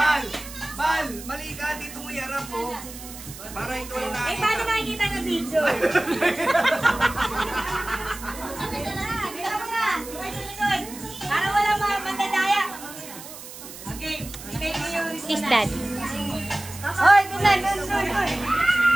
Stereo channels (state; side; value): noise; right; hiss, 14 dB below the sound